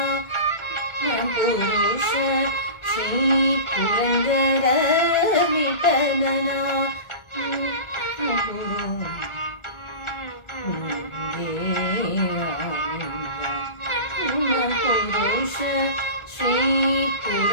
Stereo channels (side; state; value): right; late; 1.4 ms